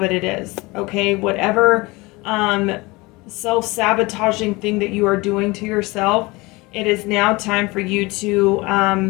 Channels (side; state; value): right; quieter; 23.4 dB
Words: it is, okay? Whatever self-sabotaging thing that you are doing to yourself, it is now time for you to